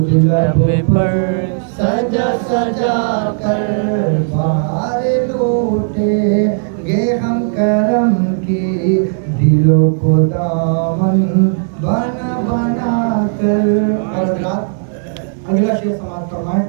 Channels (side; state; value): left; silent; digital silence